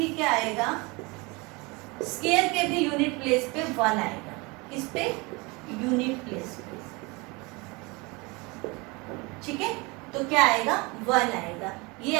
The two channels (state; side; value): quieter; left; 26.5 dB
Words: क्या आएगा, स्क्वायर के भी यूनिट प्लेस पे 1 आएगा। इस पे यूनिट प्लेस पे, ठीक है, तो क्या आएगा 1 आएगा। ये